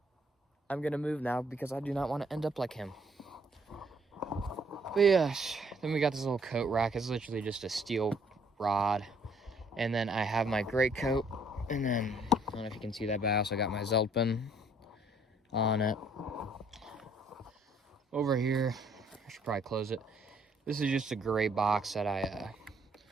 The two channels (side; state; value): both; normal; correlation 0.64